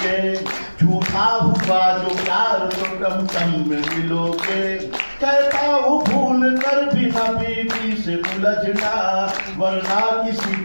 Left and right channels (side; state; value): both; inverted; correlation -1.00